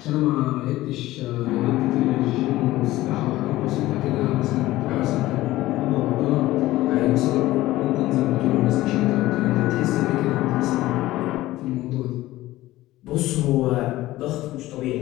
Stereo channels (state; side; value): quieter; right; 16.7 dB